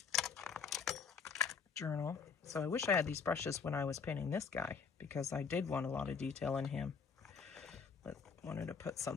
journal. So I wish I had these brushes when I was painting this guy, because I did want a lot of detail in him, but wanted to put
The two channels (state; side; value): quieter; right; 5.9 dB